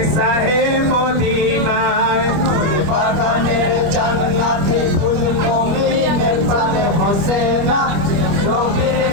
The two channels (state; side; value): late; left; 25 ms